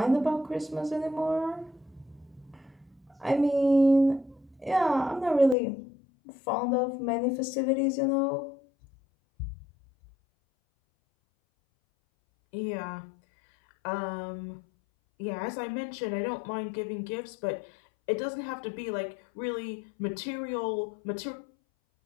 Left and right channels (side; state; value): right; drops out; at 5.6 s